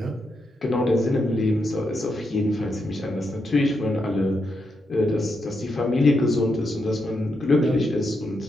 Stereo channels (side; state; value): both; normal; correlation 0.83